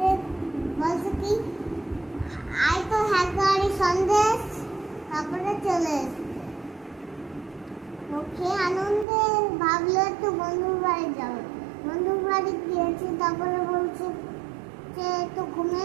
বলছে কি আয় তো হাঁড়ি সন্দেশ। তারপরে চলে এসছে ওকে আনন্দে ভাবলো একটু বন্ধুর বাড়ি যাবো। বন্ধুর বাড়ি গিয়েছি। তারপরে বলছে যে একটু ঘুমিয়ে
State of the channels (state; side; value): drops out; left; at 9.1 s